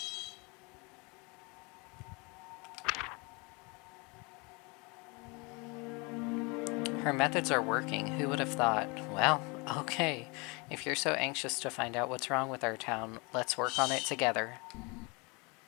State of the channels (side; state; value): right; quieter; 29.0 dB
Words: Her methods are working. Who would have thought? Well, okay. If you're so anxious to find out what's wrong with our town, let's work on it together.